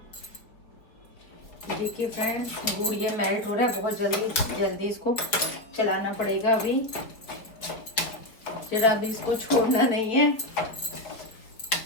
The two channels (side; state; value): right; late; 4.4 ms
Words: देखिए फ्रेंड्स गुड़ ये मेल्ट हो रहा है, बहुत जल्दी जल्दी इसको चलाना पड़ेगा अभी, जरा भी इसको छोड़ना नहीं है।